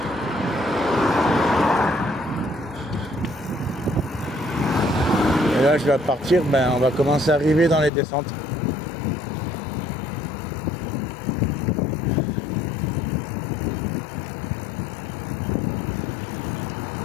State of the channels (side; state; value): right; drops out; at 7.9 s